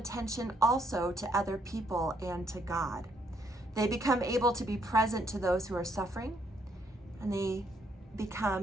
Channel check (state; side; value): normal; both; correlation 0.71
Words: also to other people and to God. They become able to be present to those who are suffering, and they